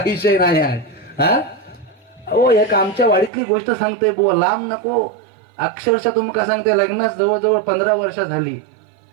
विषय नाही आहे. हा हो, एक आमच्या वाडीतली गोष्ट सांगते बुवा, लांब नको, अक्षरशः तुमका सांगते, लग्नास जवळजवळ 15 वर्ष झाली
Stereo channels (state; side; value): drops out; left; at 3.3 s